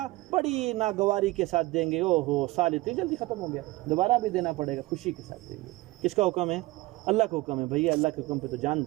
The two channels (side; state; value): left; quieter; 20.5 dB